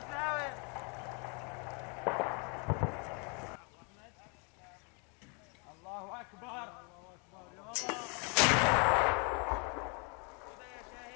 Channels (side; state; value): right; quieter; 34.7 dB